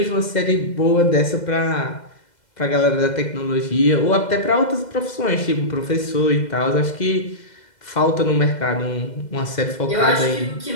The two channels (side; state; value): right; late; 2.0 ms